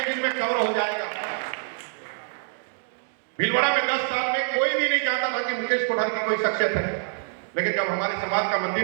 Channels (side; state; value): left; silent; 57 dB below the other